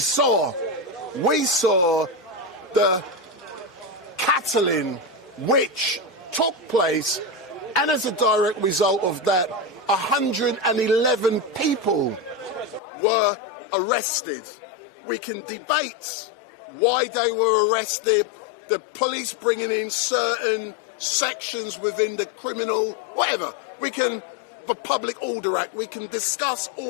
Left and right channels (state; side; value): drops out; right; at 12.8 s